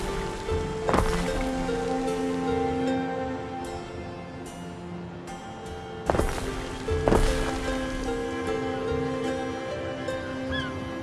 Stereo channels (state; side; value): identical; both; correlation 1.00